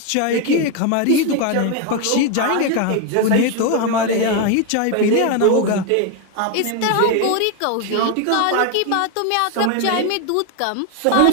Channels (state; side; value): different; both; correlation 0.01